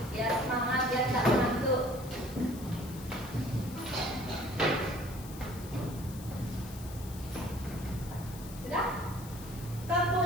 Biar semangat, biar gak ngantuk. Sudah? Tepuk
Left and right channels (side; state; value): left; noise; hiss, 16 dB below the sound